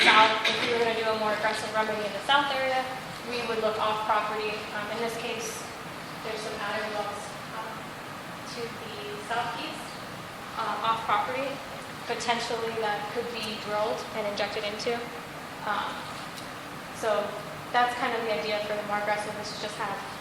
south. If we were going to do a more aggressive remedy in the south area, we would look off property. In this case, there's some added wells to the southeast, off property, potentially that could be drilled and injected into. So that's kind of the idea for the more aggressive, is to just have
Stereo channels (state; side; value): identical; both; correlation 1.00